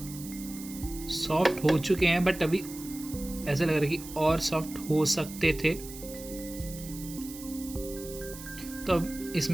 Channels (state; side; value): noise; right; hiss, 13 dB below the sound